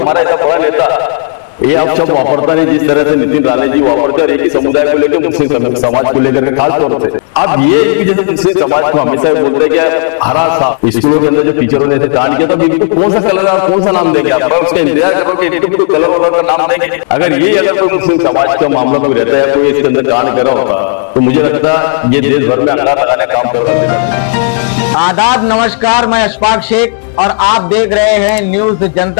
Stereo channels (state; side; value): silent; right; digital silence